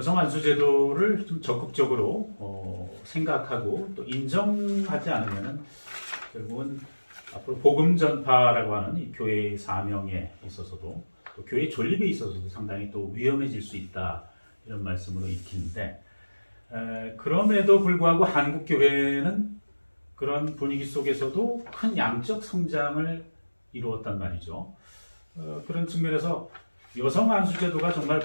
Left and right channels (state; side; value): inverted; both; correlation -1.00